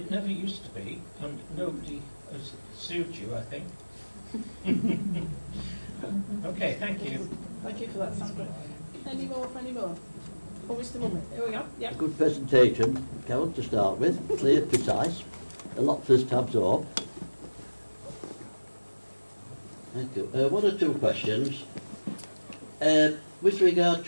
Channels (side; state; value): both; inverted; correlation -1.00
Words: never used to be, and nobody has sued you, I think. Okay, thank you. Thank you for that, Sandra. Any more? Oh, Mr. Mummett, here we go. Yeah. Good presentation, Carol, to start with. Clear, precise. A lot for us to absorb. Thank you. One or two questions. With regard